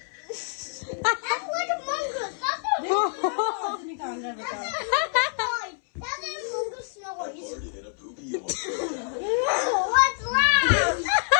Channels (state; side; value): silent; right; 61 dB below the other